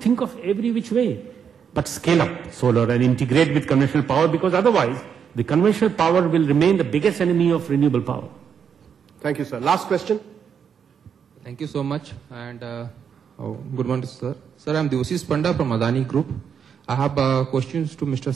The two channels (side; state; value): left; quieter; 7.3 dB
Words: of every which way, but scale up solar and integrate with conventional power, because otherwise the conventional power will remain the biggest enemy of renewable power. Thank you, sir. Last question. Thank you so much, and good morning, sir. Sir, I am Devasis Panda from Adani Group. I have questions to Mr.